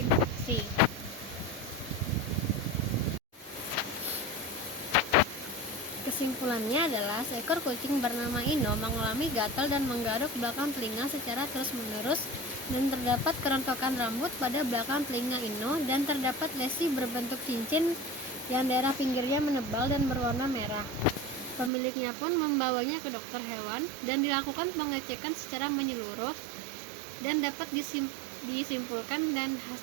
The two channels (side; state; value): left; drops out; at 21.7 s